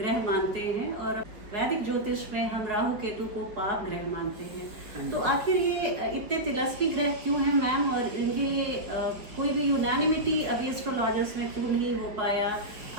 मानते हैं और वैदिक ज्योतिष में हम राहु केतु को पाप ग्रह मानते हैं, तो आखिर ये इतने तिलस्मी ग्रह क्यों हैं मैम, और इनके लिए कोई भी यूनानिमिटी अभी एस्ट्रोलॉजर्स में क्यों नहीं हो पाया?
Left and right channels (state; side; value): late; left; 4.9 ms